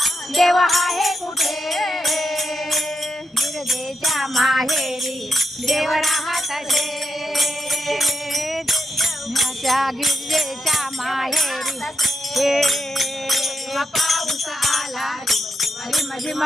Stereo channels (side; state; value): both; normal; correlation 0.82